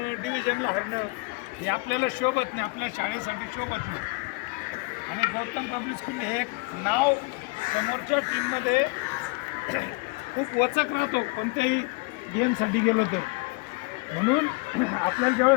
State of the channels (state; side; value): quieter; right; 27.0 dB